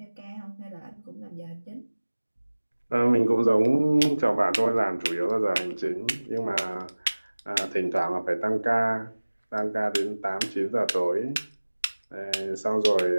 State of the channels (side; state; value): both; inverted; correlation -1.00